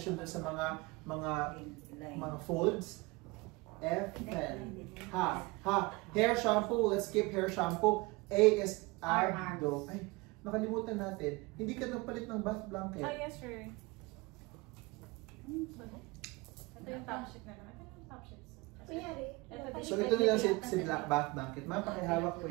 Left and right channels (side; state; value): left; quieter; 24.1 dB